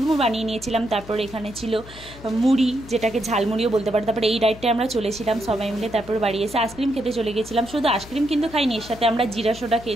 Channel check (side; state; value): left; noise; hum, 17 dB below the sound